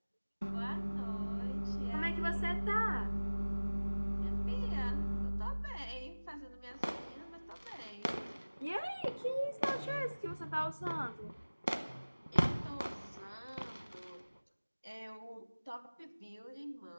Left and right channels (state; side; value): inverted; both; correlation -1.00